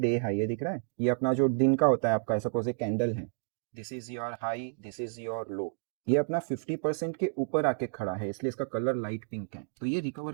high. ये दिख रहा है, ये अपना जो दिन का होता है आपका, सपोज एक कैंडल है, this is your high, this is your लो। ये अपना 50% के ऊपर आके खड़ा है, इसलिए इसका कलर लाइट पिंक है। तो ये रिकवर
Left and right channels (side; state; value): left; silent; digital silence